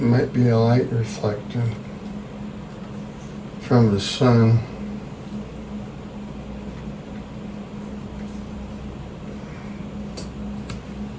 It might be a light reflecting from the sun.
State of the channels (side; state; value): both; identical; correlation 1.00